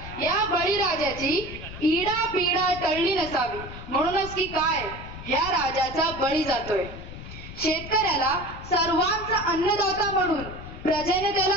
या बळीराजाची इडापिडा टळली नसावी, म्हणूनच की काय ह्या राजाचा बळी जातोय. शेतकऱ्याला सर्वांचा अन्नदाता म्हणून प्रजेने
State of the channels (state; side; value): noise; left; rumble, 12 dB below the sound